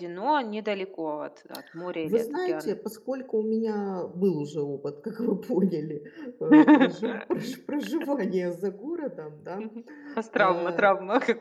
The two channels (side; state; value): both; identical; correlation 1.00